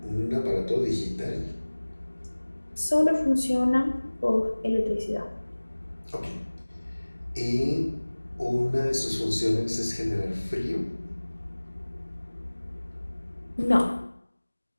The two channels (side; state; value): both; inverted; correlation -1.00